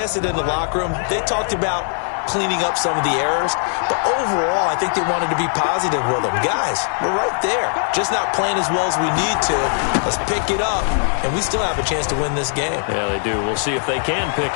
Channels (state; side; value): silent; right; 56 dB below the other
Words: it in the locker room. They talked about cleaning up some of the errors, but overall I think they wanted to be positive with them. Guys, we're right there, just not playing as well as we need to. Let's pick it up, and we still have a chance to win this game. Yeah, they do. We'll see if they can pick